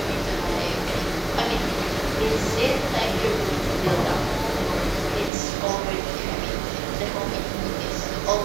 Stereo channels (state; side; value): drops out; left; at 5.3 s